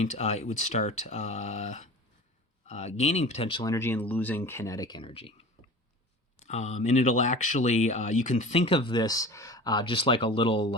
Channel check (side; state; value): both; normal; correlation 0.37